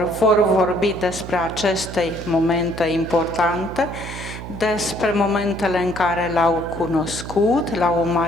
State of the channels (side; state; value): right; noise; hum, 10 dB below the sound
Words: vor vorbi despre aceste momente importante, despre momentele în care l-au cunoscut, l-au